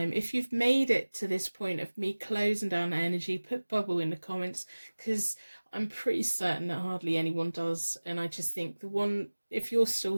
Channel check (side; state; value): both; inverted; correlation -1.00